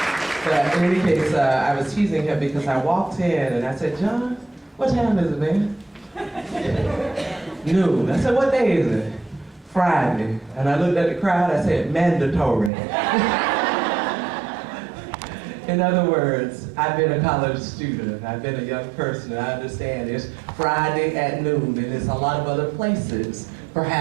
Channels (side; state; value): left; drops out; at 12.7 s